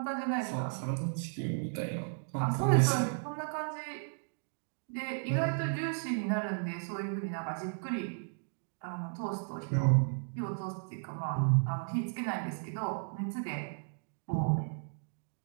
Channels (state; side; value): silent; left; digital silence